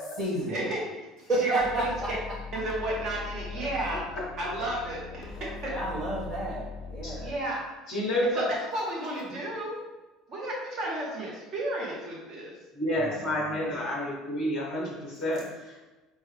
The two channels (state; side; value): normal; both; correlation 0.48